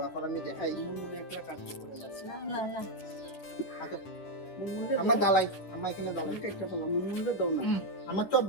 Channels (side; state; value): right; late; 10 ms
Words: এখন আমি দেখাই, আমার দালাই, আমার এখানে দালাই আমার চপ